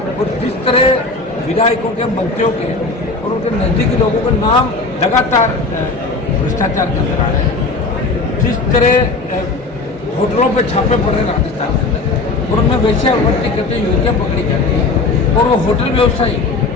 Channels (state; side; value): quieter; right; 3.6 dB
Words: और जिस तरह विधायकों के, मंत्रियों के और उनके नज़दीकी लोगों के नाम लगातार भ्रष्टाचार के अंदर आ रहे हैं, जिस तरह होटलों पे छापे पड़ रहे राजस्थान के अंदर और उनमें वैश्यावृत्ति करते युवतियाँ पकड़ी जाती हैं और वो होटल व्यवसायी